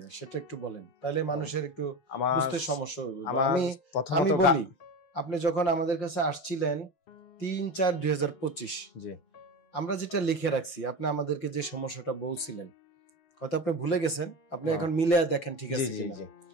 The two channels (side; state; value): right; late; 5.9 ms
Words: সেটা একটু বলেন, তাহলে মানুষের একটু বুঝতে সমস্যা হবে। আমি বলি, আপনি যখন আমাদের কাছে আসছিলেন 3/4/2025, জি, আমরা যেটা লিখে রাখছি, আপনি আমাদেরকে যে সমস্যাটা বলছিলেন, হয়তো আপনি ভুলে গেছেন, আপনি এখন মিলে দেখেন ঠিক আছে কিনা।